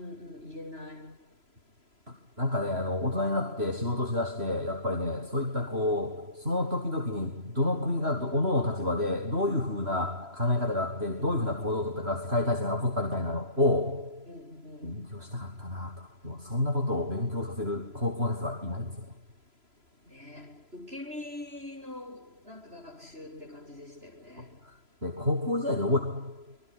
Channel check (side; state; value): left; late; 3.0 ms